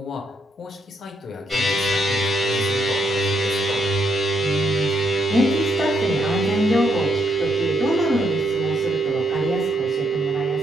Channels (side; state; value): both; normal; correlation 0.75